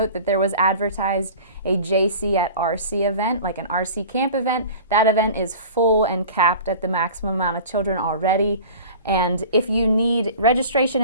that there was advertised a JC at RC event, like an RC camp event. That event is full and capped at the maximum amount of children already. And if you need registration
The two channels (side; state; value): both; inverted; correlation -0.40